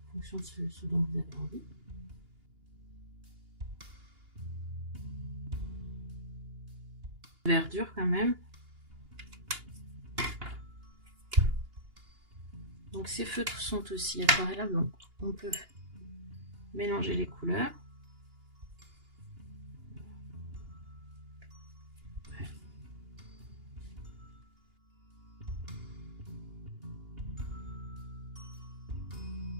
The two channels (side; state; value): left; late; 2.8 ms